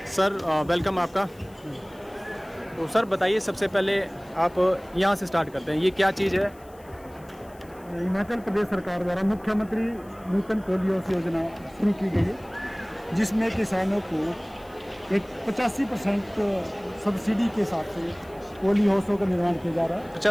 सर वेलकम आपका। तो सर बताइए, सबसे पहले आप यहाँ से स्टार्ट करते हैं, ये क्या चीज़ है? हिमाचल प्रदेश सरकार द्वारा मुख्यमंत्री नूतन पोलियो योजना शुरू की गई है, जिसमें किसानों को एक 85% सब्सिडी के साथ से पोलियो हाउसों का निर्माण किया जा रहा है।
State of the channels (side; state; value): left; noise; hiss, 28 dB below the sound